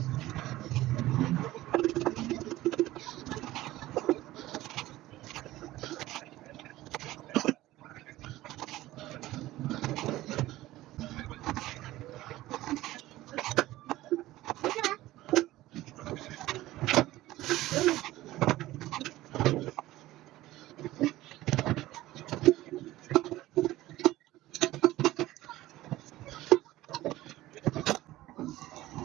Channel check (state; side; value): quieter; left; 16.5 dB